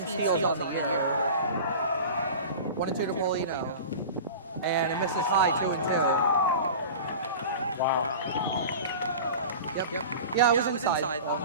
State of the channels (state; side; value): inverted; both; correlation -0.35